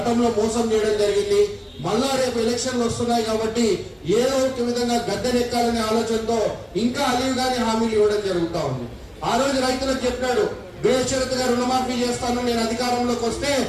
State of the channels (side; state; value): both; identical; correlation 1.00